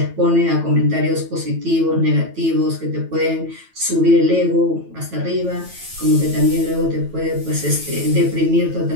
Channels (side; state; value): left; late; 9.1 ms